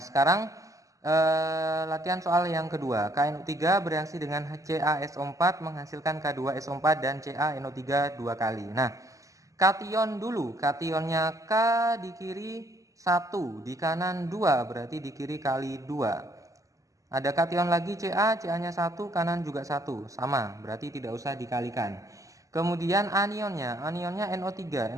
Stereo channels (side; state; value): left; late; 0.16 ms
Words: sekarang latihan soal yang kedua. KNO3 bereaksi dengan CaSO4 menghasilkan K2SO4 dan CaNO3 2 kali. Nah, kation dulu. Kationnya K di kiri 1, di kanan 2, berarti di kiri kali 2. Ada kation lagi Ca, Ca-nya 1, kanan juga 1, sama, berarti tidak usah dikalikan. Kemudian anionnya NO3,